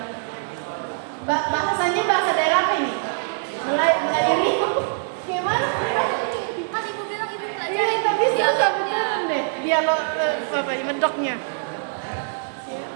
Bahasanya bahasa daerah apa ini? Melayu. Gimana? Kan Ibu bilang Ibu belajar. Iya, tapi susah beneran deh. Dialog apa ini medoknya?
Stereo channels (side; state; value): left; silent; digital silence